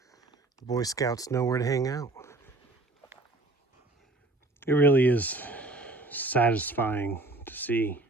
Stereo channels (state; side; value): quieter; left; 3.0 dB